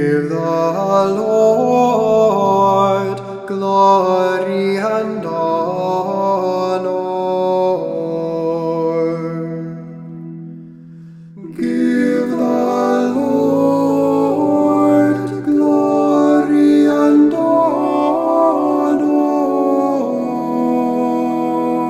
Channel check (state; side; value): identical; both; correlation 1.00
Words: the Lord glory and honor. Give the Lord glory and honor.